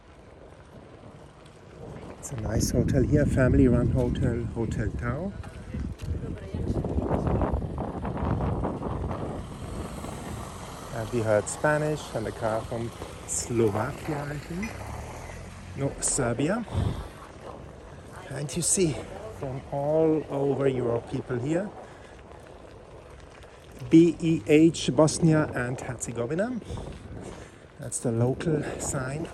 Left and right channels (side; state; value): both; identical; correlation 1.00